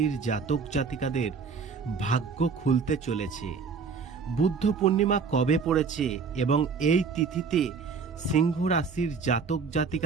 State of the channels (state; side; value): quieter; left; 5.3 dB